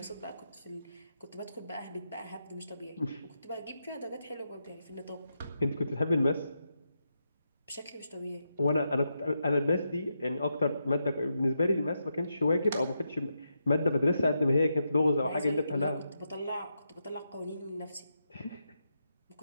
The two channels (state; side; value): inverted; both; correlation -0.84